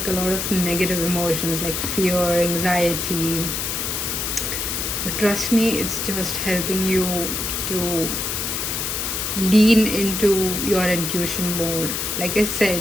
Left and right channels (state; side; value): noise; left; hiss, 2 dB below the sound